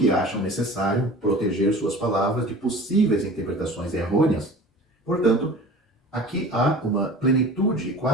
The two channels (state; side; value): normal; both; correlation 0.40